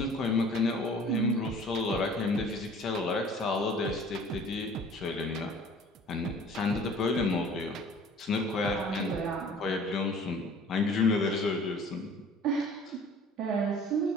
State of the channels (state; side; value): normal; both; correlation 0.49